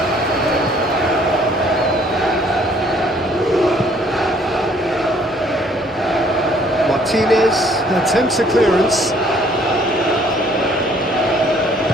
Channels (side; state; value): both; normal; correlation 0.60